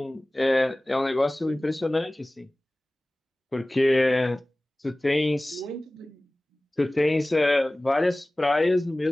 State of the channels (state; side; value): normal; both; correlation 0.98